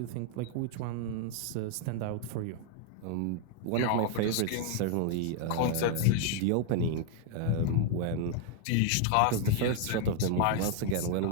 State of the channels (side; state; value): both; different; correlation 0.00